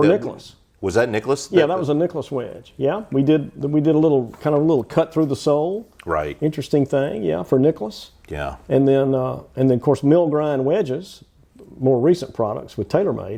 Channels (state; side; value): identical; both; correlation 1.00